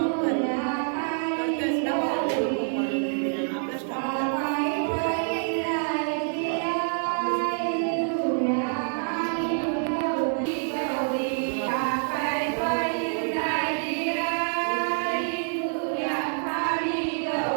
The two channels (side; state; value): left; silent; digital silence